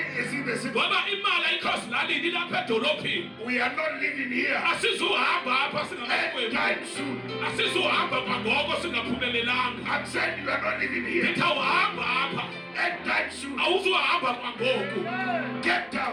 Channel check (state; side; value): identical; both; correlation 1.00